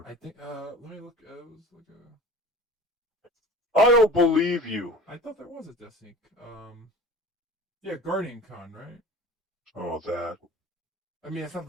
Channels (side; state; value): both; normal; correlation 0.40